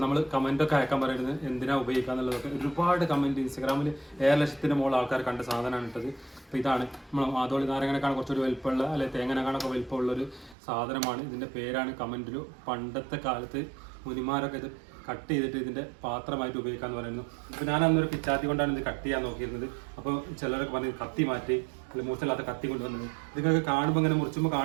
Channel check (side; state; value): left; drops out; at 10.6 s